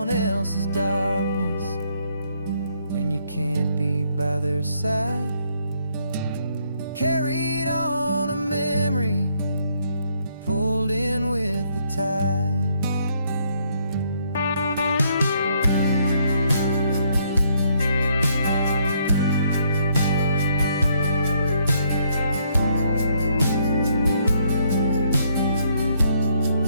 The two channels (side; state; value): both; inverted; correlation -0.71